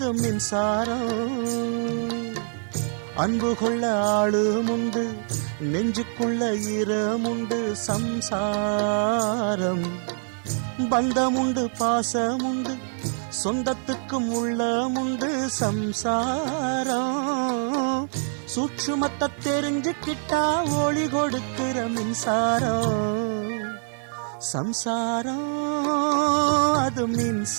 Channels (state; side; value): silent; left; 57 dB below the other